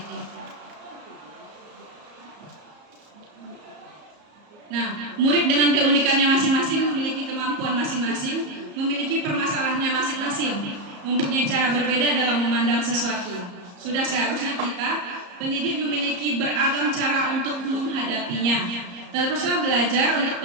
itu. Nah, murid dengan keunikannya masing-masing memiliki kemampuan masing-masing, memiliki permasalahannya masing-masing, mempunyai cara berbeda dalam memandang sesuatu. Sudah seharusnya kita, pendidik memiliki beragam cara untuk menghadapinya. Teruslah belajar untuk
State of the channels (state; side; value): late; left; 34 ms